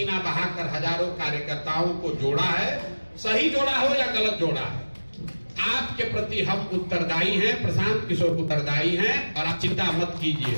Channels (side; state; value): both; inverted; correlation -1.00